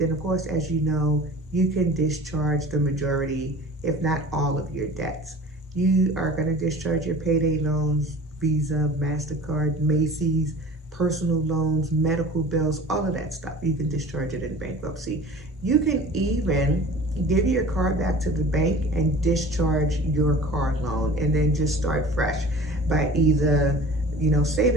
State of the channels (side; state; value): both; normal; correlation 0.42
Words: of course, as you know, you can discharge the majority, if not all of your debts. You are going to discharge your payday loans, Visa, MasterCard, Macy's, personal loans, medical bills, all of that stuff. You can discharge it in bankruptcy. You can even give your car back to the bank and discharge your car loan and then just start fresh by either